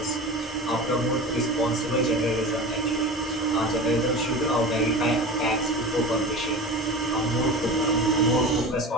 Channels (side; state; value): both; normal; correlation 0.31